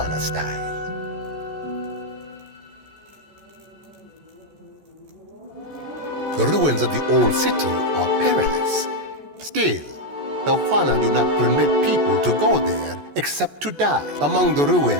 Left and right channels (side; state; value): left; late; 14 ms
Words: style. The ruins of the old city are perilous. Still, the Juana do not permit people to go there except to die. Among the